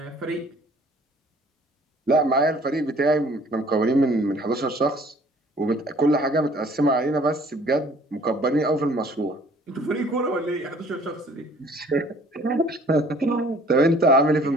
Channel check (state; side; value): normal; both; correlation 0.55